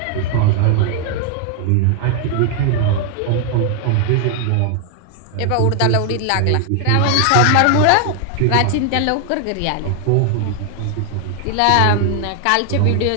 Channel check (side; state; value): both; different; correlation 0.00